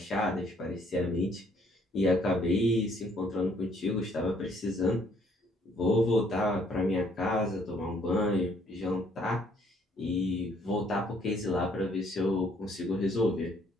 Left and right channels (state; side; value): normal; both; correlation 0.64